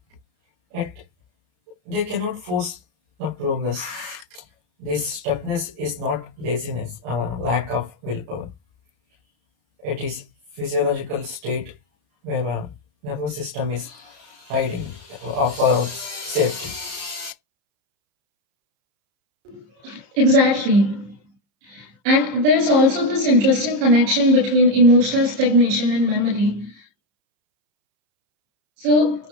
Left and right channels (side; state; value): left; late; 33 ms